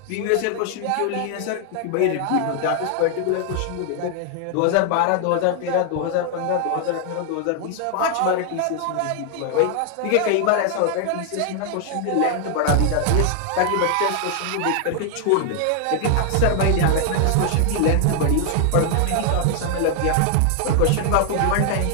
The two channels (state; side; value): different; both; correlation 0.00